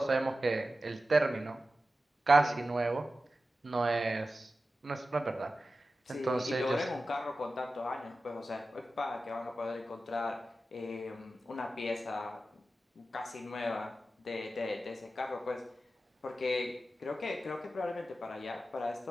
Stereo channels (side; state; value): both; normal; correlation 0.93